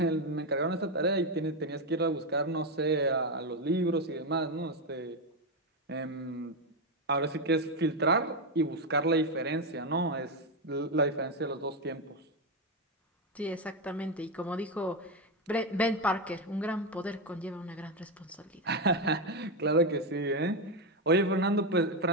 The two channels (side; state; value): both; normal; correlation 0.08